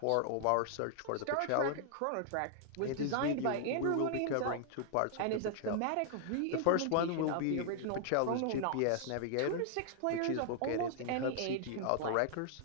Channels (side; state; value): both; different; correlation -0.01